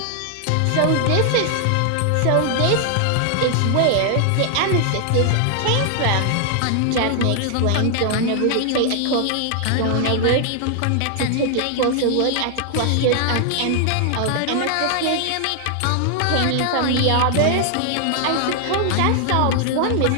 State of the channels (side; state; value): both; different; correlation 0.00